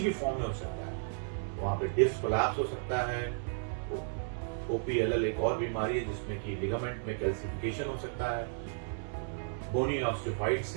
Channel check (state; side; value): silent; left; 55 dB below the other